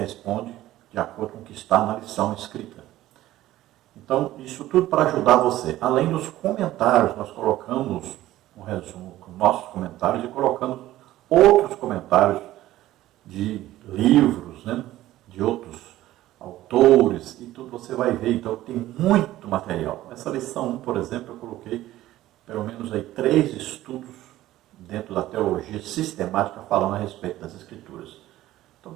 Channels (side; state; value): left; quieter; 15.0 dB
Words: de acordo com o que está na lição escrita. Então, isso tudo para ajudar você. Além dos comentários, nós colocamos um resumo com nossos comentários e colocamos outros comentários de livros, de outros autores, e tudo você vai ver. Então, tem muito material. Essa lição 1, por exemplo, eu coloquei pelo menos aí 3 estudos dentro da teologia sistemática falando a respeito das Escrituras. Então